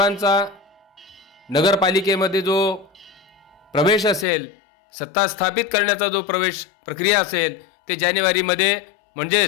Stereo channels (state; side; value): drops out; right; at 4.2 s